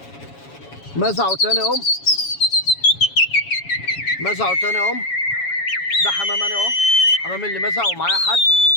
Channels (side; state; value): right; late; 7.2 ms